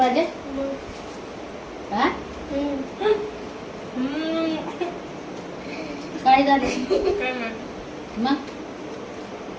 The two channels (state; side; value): identical; both; correlation 1.00